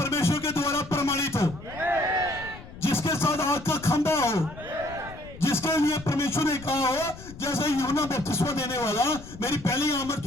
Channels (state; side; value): noise; left; rumble, 15 dB below the sound